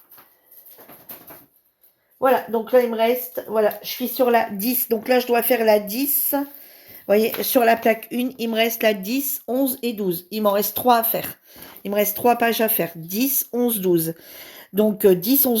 Voilà, donc là il me reste, voilà, je suis sur la 10. Donc là je dois faire la 10. Vous voyez, sur la plaque 1, il me reste la 10, 11 et 12. Il m'en reste 3 à faire. Il me reste 3 pages à faire. 10, 11, 12. Donc 10,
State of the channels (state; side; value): identical; both; correlation 1.00